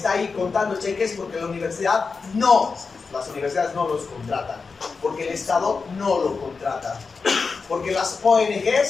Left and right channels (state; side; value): quieter; right; 4.8 dB